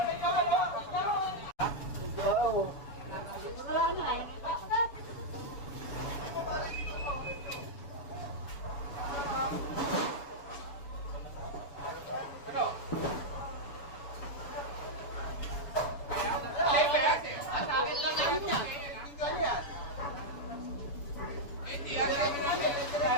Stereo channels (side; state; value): right; late; 7.0 ms